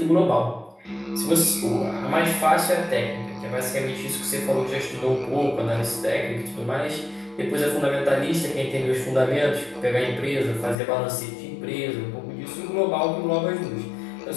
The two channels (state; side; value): drops out; right; at 10.8 s